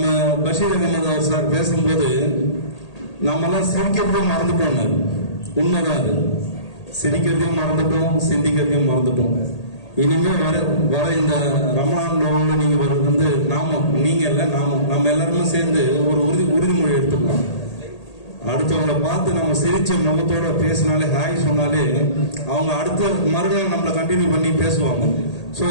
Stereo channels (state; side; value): late; right; 1.8 ms